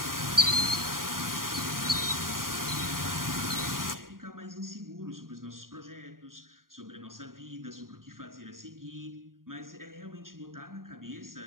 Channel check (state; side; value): late; left; 0.91 ms